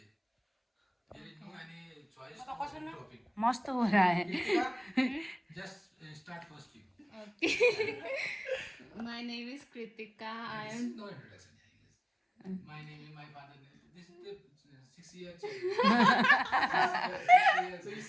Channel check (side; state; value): both; identical; correlation 1.00